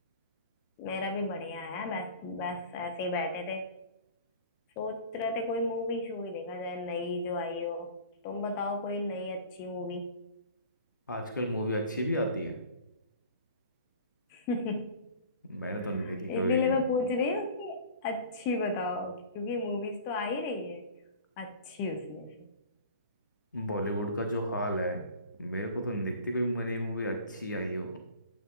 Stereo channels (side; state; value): both; inverted; correlation -0.41